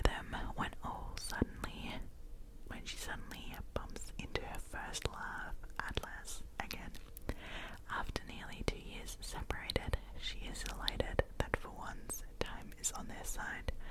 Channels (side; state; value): both; identical; correlation 1.00